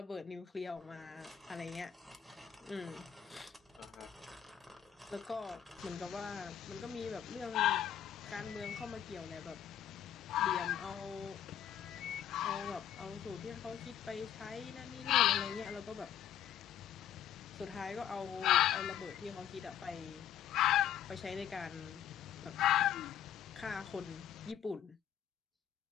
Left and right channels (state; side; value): quieter; right; 9.9 dB